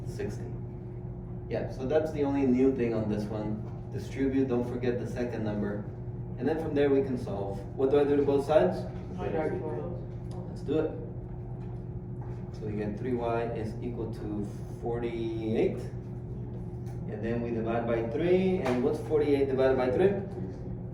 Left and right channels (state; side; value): identical; both; correlation 1.00